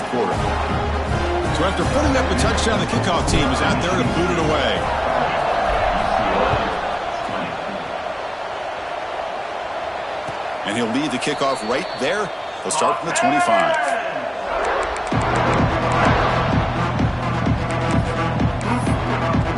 quarter. So after putting up a touchdown, the kickoff team is out there to boot it away. And he'll lead the kickoff right there. He'll start from the 25.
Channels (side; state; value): both; identical; correlation 1.00